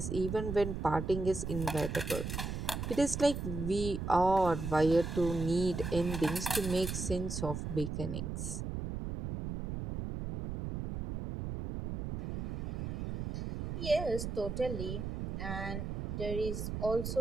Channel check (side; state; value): right; noise; rumble, 4 dB below the sound